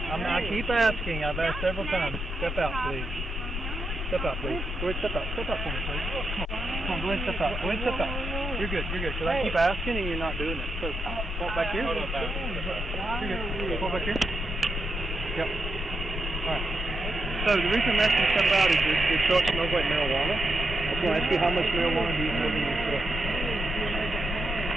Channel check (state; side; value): normal; both; correlation 0.84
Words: keep asking. I've asked several times. Step out, please. Step out, please. Go ahead, step out. Step out for me, please. Come on, go ahead, step out. Go ahead, step out. You're good, you're good. Because I keep asking and you're not doing it. So, walk back here. You're good. Walk back here. Yep. Alright. So, the reason I'm asking you to step out is your truck smells like marijuana. I was going to ask you how much marijuana do you have in your truck?